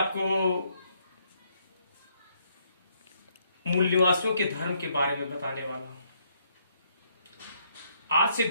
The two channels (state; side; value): inverted; both; correlation -0.72